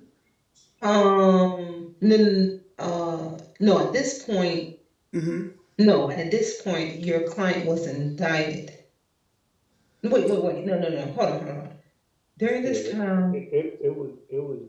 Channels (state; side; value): identical; both; correlation 1.00